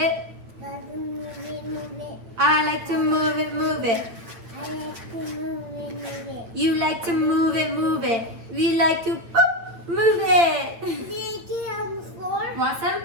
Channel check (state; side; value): late; left; 8.9 ms